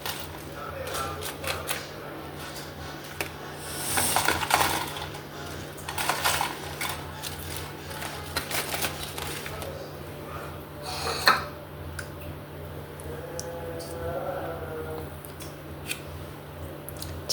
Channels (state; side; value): identical; both; correlation 1.00